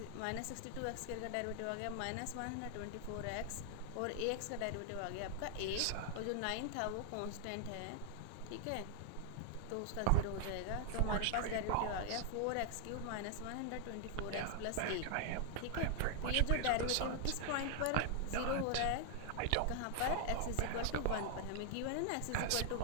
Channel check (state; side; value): different; both; correlation 0.00